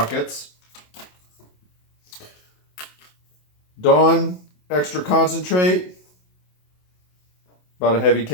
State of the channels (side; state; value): right; late; 27 ms